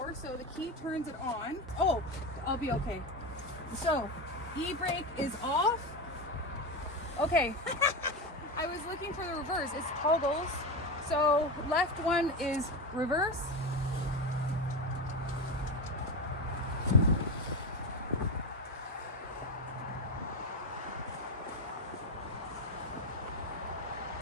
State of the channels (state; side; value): normal; both; correlation 0.17